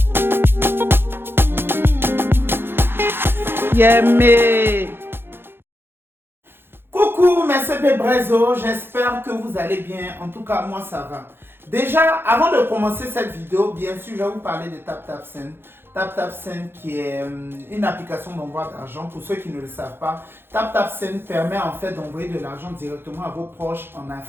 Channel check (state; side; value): late; left; 0.11 ms